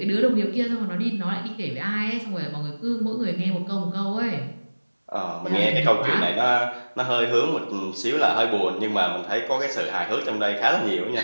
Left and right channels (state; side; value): inverted; both; correlation -1.00